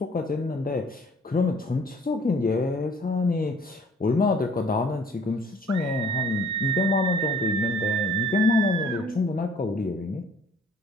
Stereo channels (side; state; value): both; normal; correlation 0.55